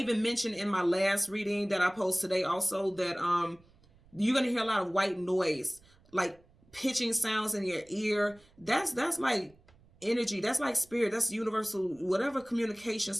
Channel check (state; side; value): noise; right; rumble, 29 dB below the sound